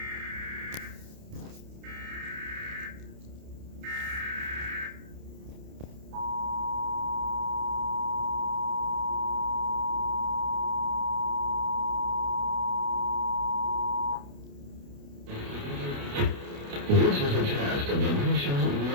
This is a test of the National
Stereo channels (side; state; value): left; late; 29 ms